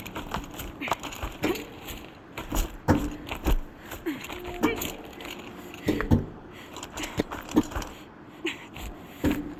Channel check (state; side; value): identical; both; correlation 1.00